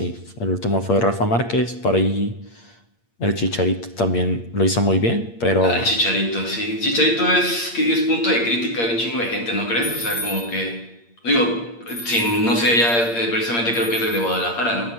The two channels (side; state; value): right; late; 8.6 ms